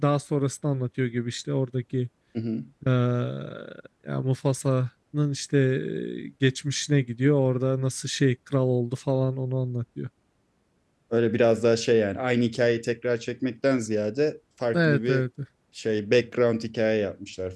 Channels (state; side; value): identical; both; correlation 1.00